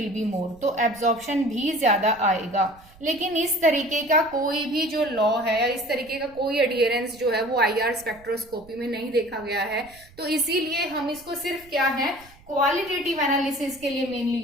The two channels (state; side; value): noise; right; rumble, 25 dB below the sound